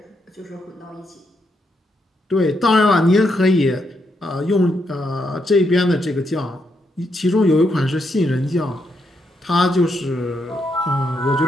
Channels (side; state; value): both; normal; correlation 0.79